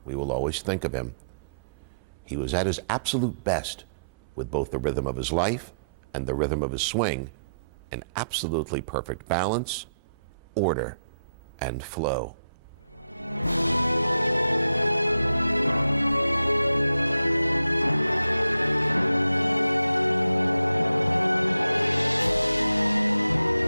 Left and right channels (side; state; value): both; inverted; correlation -0.79